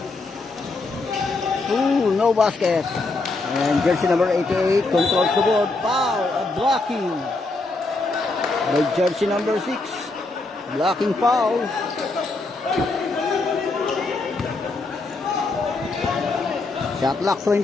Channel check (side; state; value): right; quieter; 3.3 dB